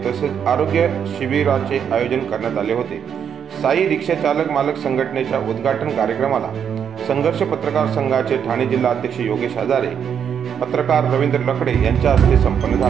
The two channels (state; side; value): quieter; left; 8.0 dB